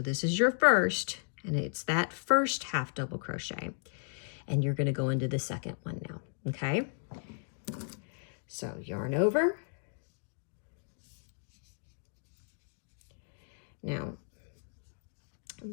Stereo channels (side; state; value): right; silent; digital silence